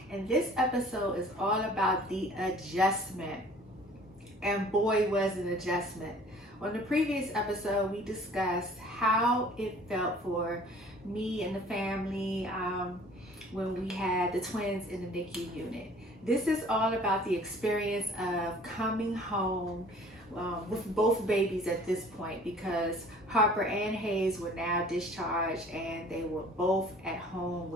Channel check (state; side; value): normal; both; correlation 0.51